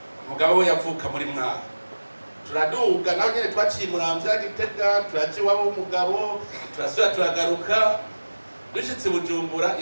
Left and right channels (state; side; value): inverted; both; correlation -1.00